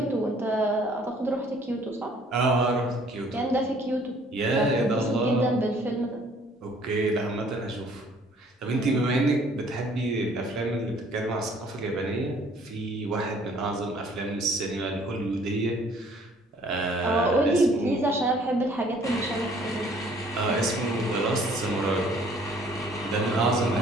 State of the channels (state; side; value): normal; both; correlation 0.58